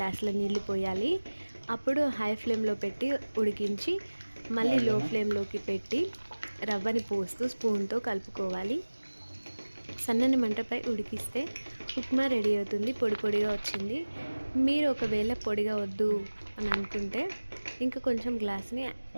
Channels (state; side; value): inverted; both; correlation -1.00